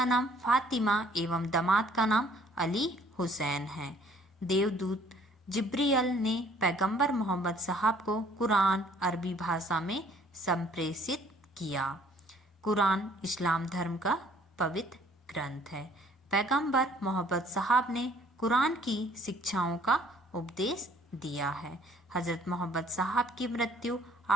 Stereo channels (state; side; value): normal; both; correlation 0.59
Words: नाम फातिमा एवं दामाद का नाम अली हुसैन है। देवदूत जिब्रियल ने पैगंबर मोहम्मद साहब को कुरान अरबी भाषा में संप्रेषित किया। कुरान इस्लाम धर्म का पवित्र ग्रंथ है। पैगंबर मोहम्मद साहब ने कुरान की शिक्षाओं का उपदेश दिया है। हजरत मोहम्मद साहब की मृत्यु